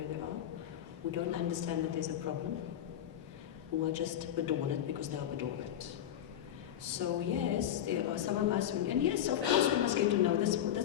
they are, who don't understand that there's a problem, who are just bedormant because they are bedormant. So yes, there are some of us, and yes, of course we must get to know this.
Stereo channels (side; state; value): right; quieter; 10.7 dB